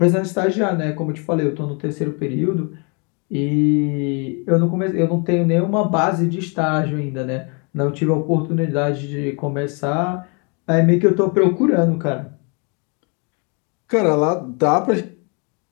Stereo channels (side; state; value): right; quieter; 34.7 dB